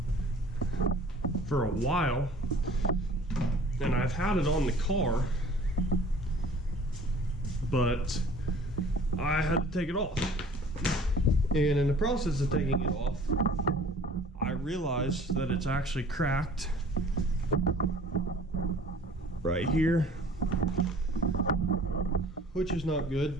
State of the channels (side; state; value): both; normal; correlation 0.49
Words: for a while, and I've had it on the car, but I had to take it off. And in the process of taking it off, I realized that it's actually cracked right here, which is not